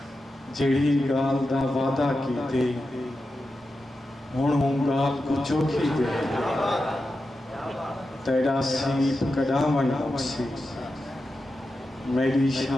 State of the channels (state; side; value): normal; both; correlation 0.90